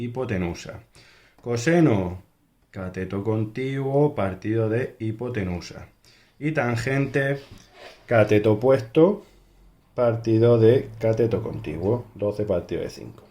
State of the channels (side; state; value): both; identical; correlation 1.00